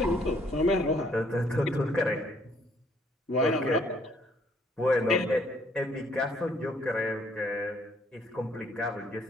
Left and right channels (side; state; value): both; normal; correlation 0.65